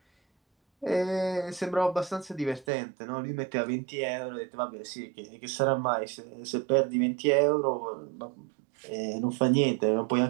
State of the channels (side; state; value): left; drops out; at 2.7 s